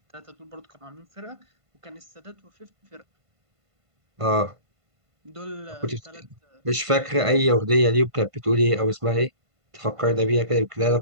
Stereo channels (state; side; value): late; left; 1.5 ms